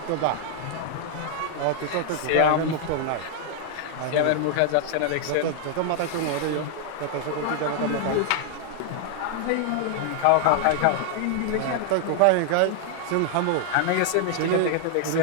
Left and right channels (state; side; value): different; both; correlation 0.00